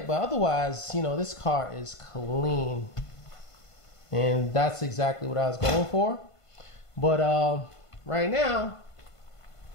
But otherwise, this car is clean. And that's exactly what I was going for. But right now,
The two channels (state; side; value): late; right; 1.5 ms